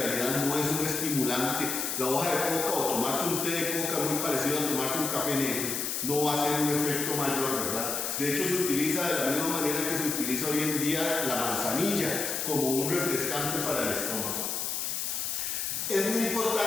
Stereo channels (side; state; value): left; noise; hiss, 2 dB below the sound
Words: no es un estimulante. La hoja de coca o tomarse un té de coca muy parecido a tomarse un café negro no va a ser un efecto mayor, ¿verdad? De hecho, se utiliza de la misma manera que se utiliza hoy en día la manzanilla como un refrescante para el estómago. Es muy